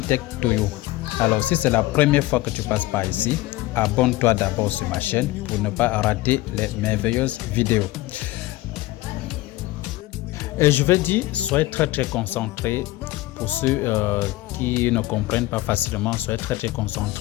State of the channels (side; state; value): right; quieter; 18.2 dB